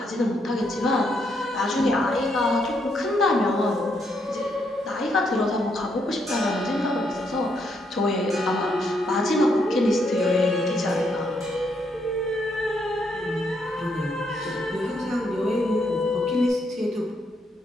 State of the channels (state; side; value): normal; both; correlation 0.76